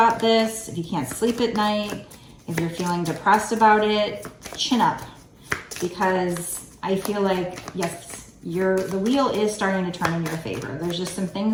this, if you can't sleep at night, if you're feeling depressed about it, chin up. Because I feel like, yes, the wheel is starting to turn in your favor. There's just some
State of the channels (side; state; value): both; identical; correlation 1.00